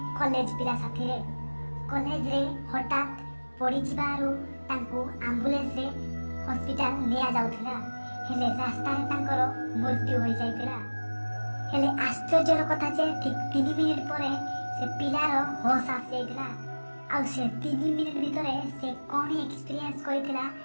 कॉलेज पिला साथीरे। कॉलेज रे हठात पड़ी जिबारु तांको एम्बुलेंस रे हॉस्पिटल निया जाउथिला, हेले रास्ता रे तांकर मृत्यु होई जाइथिला। हेले आश्चर्यर कथा जे ठीक 3 मिनिट परे से पिलार होश आसी जाइथिला आ से 3 मिनिट भितरे से कोन एक्सपीरियंस करिथिला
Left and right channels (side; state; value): both; inverted; correlation -1.00